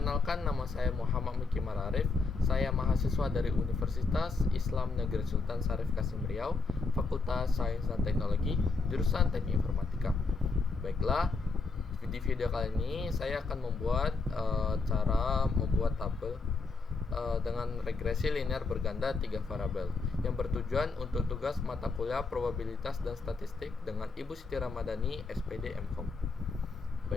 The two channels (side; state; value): right; quieter; 4.1 dB